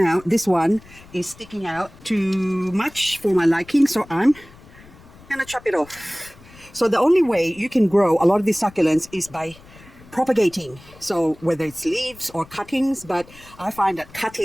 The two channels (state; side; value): noise; left; rumble, 23 dB below the sound